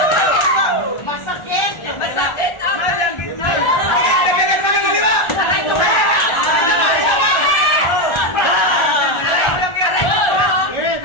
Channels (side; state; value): right; late; 1.4 ms